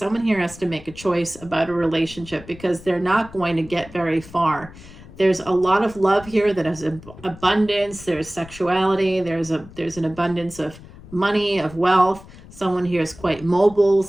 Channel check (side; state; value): left; noise; rumble, 19 dB below the sound